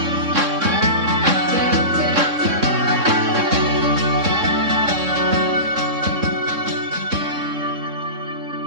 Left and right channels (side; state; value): left; late; 3.6 ms